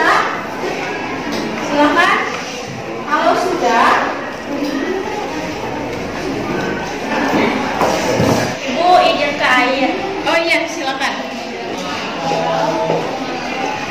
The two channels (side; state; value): both; identical; correlation 1.00